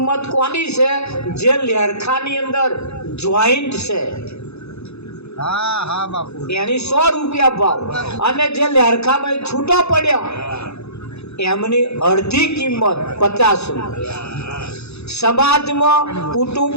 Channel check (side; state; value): right; late; 0.80 ms